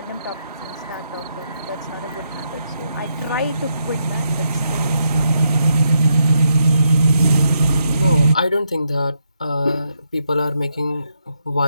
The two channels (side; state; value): both; inverted; correlation -0.80